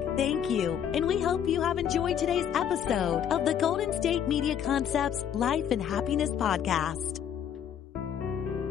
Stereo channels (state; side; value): quieter; right; 8.9 dB